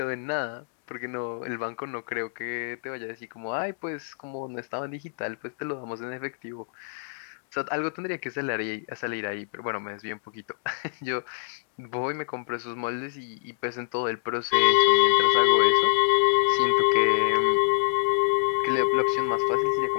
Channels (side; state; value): right; silent; digital silence